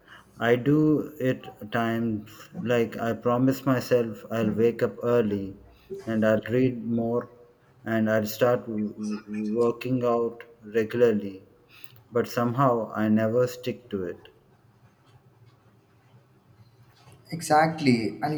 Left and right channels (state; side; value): identical; both; correlation 1.00